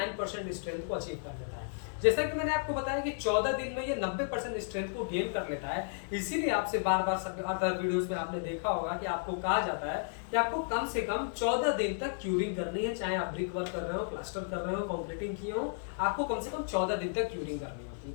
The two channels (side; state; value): right; silent; digital silence